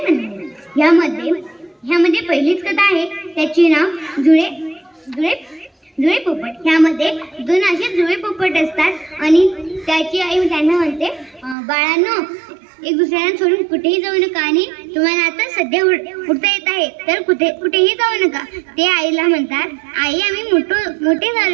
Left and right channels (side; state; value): left; drops out; at 11.6 s